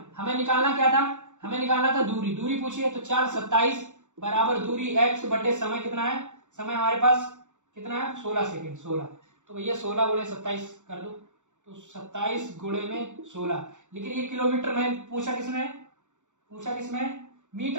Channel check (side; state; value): left; late; 0.85 ms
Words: हमें निकालना क्या था, हमें निकालना था दूरी, दूरी पूछी है, तो चाल 27 बराबर दूरी x बटे समय कितना है, समय हमारे पास कितना है 16 सेकेंड 16, तो भैया 16 गुणे 27 कर दो, तो 27 गुणे में 16। लेकिन ये किलोमीटर में पूछा किसमें,